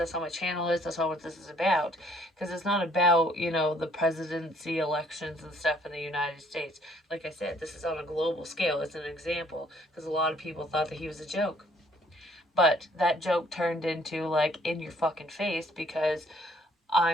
channel is. That's not what this is about. Because it's not about, the presidency elections and stuff in the United States. Like I said, this is on a global scale. It's an example because a lot of people thought that he was a joke. But that joke turned into, like, in your fucking face, because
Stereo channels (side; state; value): both; normal; correlation 0.62